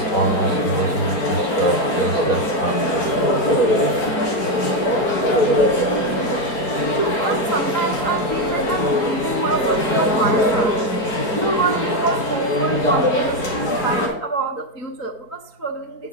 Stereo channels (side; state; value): right; late; 4.4 ms